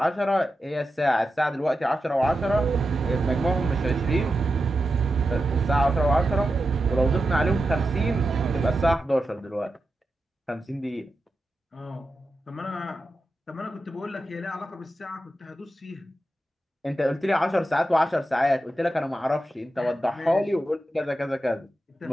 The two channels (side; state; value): both; normal; correlation 0.90